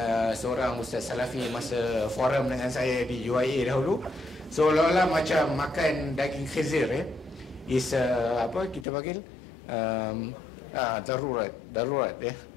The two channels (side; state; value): right; drops out; at 8.8 s